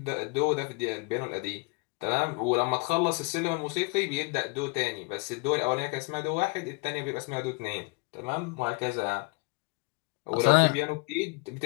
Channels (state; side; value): quieter; right; 29.5 dB